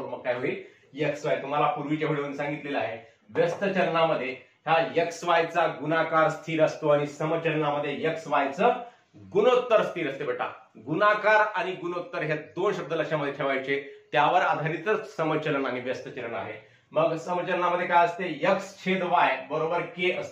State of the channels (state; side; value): identical; both; correlation 1.00